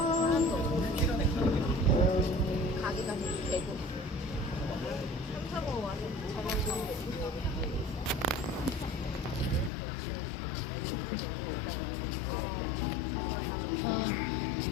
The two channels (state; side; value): drops out; right; at 9.7 s